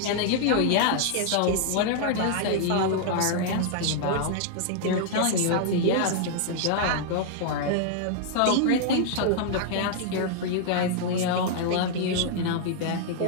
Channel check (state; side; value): different; both; correlation -0.01